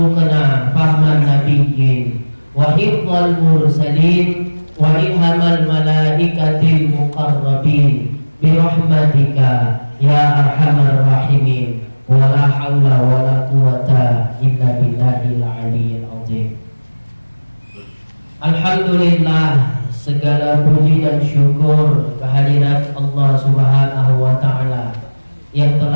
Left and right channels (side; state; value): both; inverted; correlation -1.00